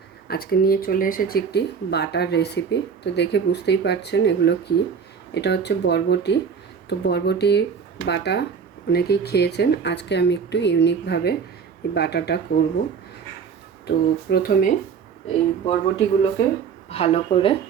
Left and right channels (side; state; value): left; quieter; 6.4 dB